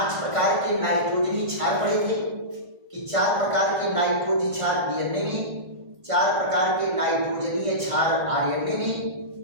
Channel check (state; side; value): late; left; 1.5 ms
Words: प्रकार के नाइट्रोजनी क्षार पढ़े थे कि 4 प्रकार के नाइट्रोजन क्षार डीएनए में, 4 प्रकार के नाइट्रोजनीय क्षार आरएनए में